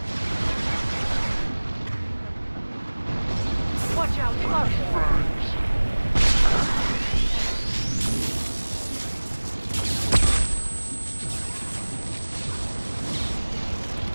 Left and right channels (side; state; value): both; inverted; correlation -1.00